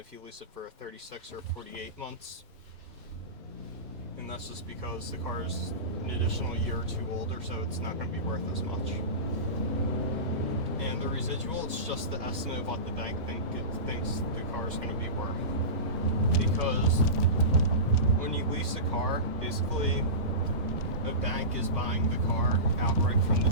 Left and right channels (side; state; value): left; late; 1.1 ms